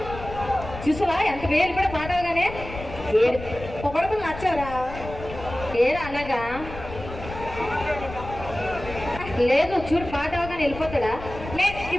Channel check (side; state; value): left; noise; rumble, 12 dB below the sound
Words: చూసావా ఎంత వేలు కూడా మాటవగానే పొగడతలు నచ్చారా ఏరా అలాగా లేదు చూడు పాట అవగానే వెళ్ళిపోతాడా.